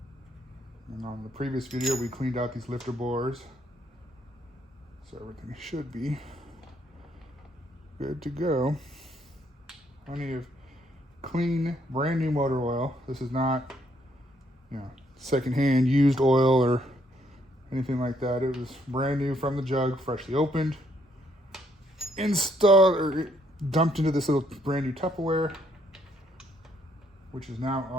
And on the previous video, we cleaned out these lifter bores, so everything should be good to go. Plenty of clean, brand new motor oil. This is not, secondhand used oil or anything like that. It was brand new from the jug, freshly opened, installed, or dumped into this little brand new Tupperware. which is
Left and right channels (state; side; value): normal; both; correlation 0.70